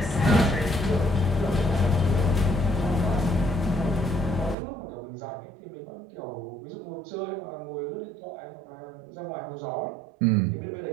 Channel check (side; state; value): left; drops out; at 4.5 s